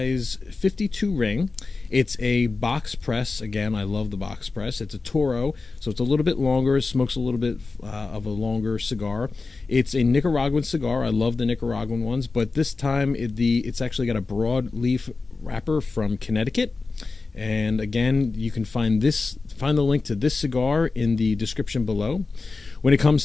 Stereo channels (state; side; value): quieter; right; 4.0 dB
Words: 52 ring. It's a box press. Again, I love the box press. It's a Toro, so it's a little bit longer. Smokes a little bit of a longer cigar. It's a Nicaraguan cigar. I love the Nicaraguan ones, but this time it's actually got a broadleaf wrapper from Connecticut. And again, you can find the link to this cigar in the description below. When it comes